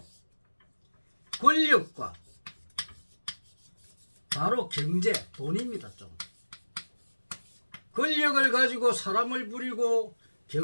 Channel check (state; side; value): inverted; both; correlation -1.00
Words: 권력과 바로 경제, 돈입니다. 좀 권력을 가지고 사람을 부리고